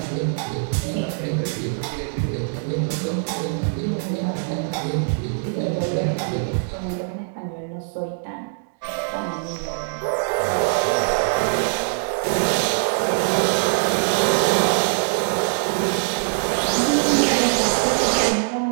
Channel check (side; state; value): left; silent; 64 dB below the other